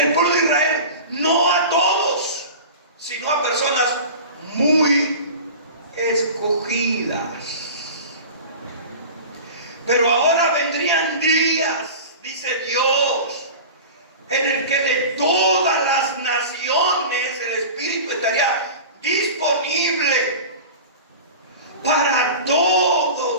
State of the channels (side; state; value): both; inverted; correlation -0.35